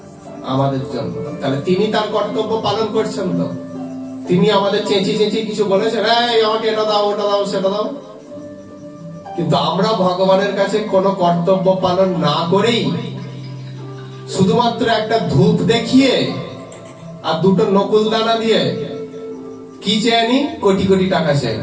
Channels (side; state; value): both; identical; correlation 1.00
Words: আমাদের জন্য। তাহলে তিনি তার কর্তব্য পালন করছেন তো। তিনি আমাদের চেঁচি চেঁচি কিছু বলেছেন, এই আমাকে এটা দাও, ওটা দাও, সেটা দাও। কিন্তু আমরা ভগবানের কাছে কোনো কর্তব্য পালন না করেই শুধুমাত্র একটা ধূপ দেখিয়ে আর দুটো নকুল দানা দিয়ে কি চেয়ে নি? কোটি কোটি টাকা চেয়ে